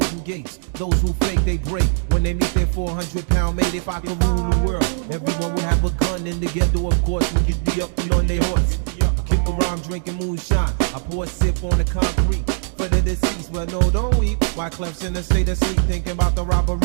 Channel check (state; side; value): silent; left; digital silence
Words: gates. Those who fake, they break. When they meet their 400-pound mate, if I could rule the world, everyone would have a gun in the ghetto, of course. We could be up and on their horse. Kick around drinking moonshine. I pour a sip on the concrete for the deceased. Well, no, don't weep. Why Clef's in a state of sleep, thinking about the robbery